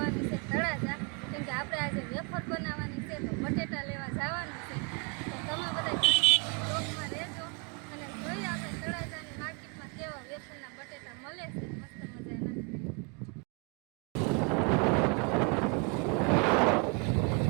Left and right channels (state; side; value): quieter; left; 34.2 dB